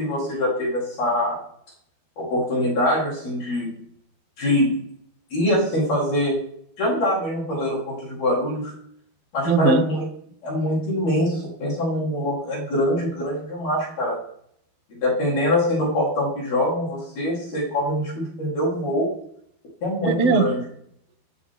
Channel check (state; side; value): late; right; 12 ms